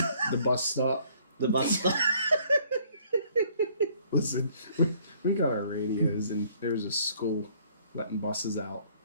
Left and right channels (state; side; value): inverted; both; correlation -0.61